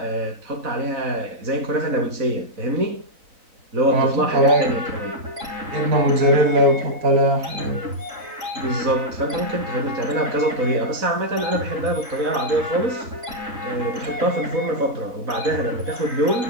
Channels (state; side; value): late; left; 3.9 ms